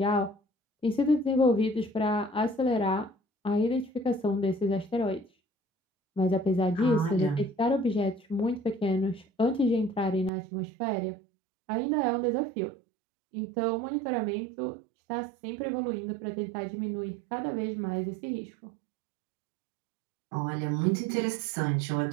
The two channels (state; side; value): drops out; left; at 10.3 s